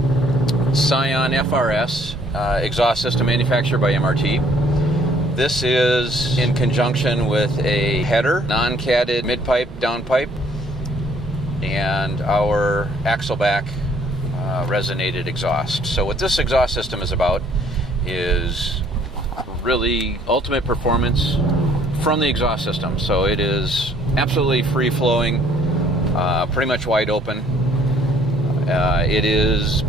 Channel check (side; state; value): both; normal; correlation 0.61